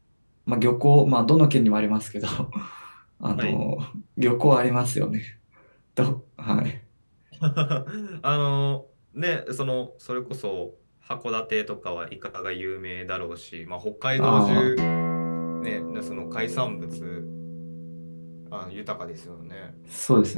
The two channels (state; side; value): inverted; both; correlation -1.00